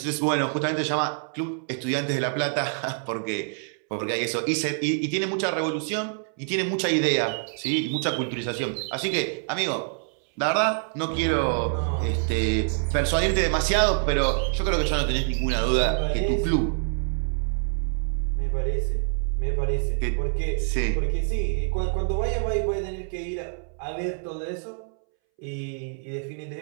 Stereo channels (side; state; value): left; silent; 61 dB below the other